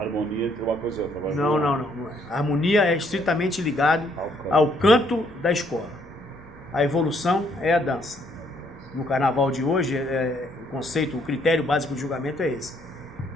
harmonia entre uma coisa e outra. Não é. A harmonia é estritamente ligado ao canto da escola. A evolução é a dança. No carnaval de hoje, o conceito, o critério básico de julgamento é esse.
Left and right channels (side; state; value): both; normal; correlation 0.68